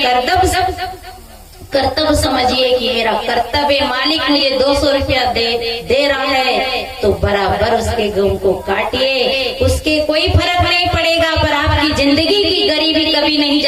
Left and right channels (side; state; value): both; identical; correlation 1.00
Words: कर्तव्य समझिए कि मेरा कर्तव्य, मालिक मुझे 200 रुपया दे रहा है तो बराबर उसके गेहूं को काटिए, उसके कोई फर्क नहीं पड़ेगा, पर आपकी जिंदगी की गरीबी कभी नहीं